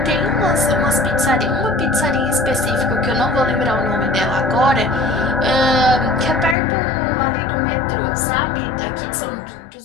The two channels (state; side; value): drops out; right; at 6.6 s